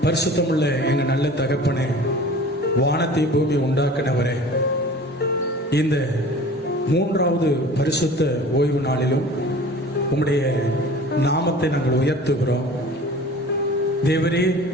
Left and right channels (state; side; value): normal; both; correlation 0.43